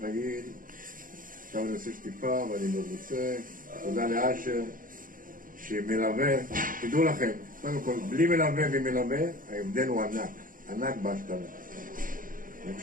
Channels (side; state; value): left; late; 0.40 ms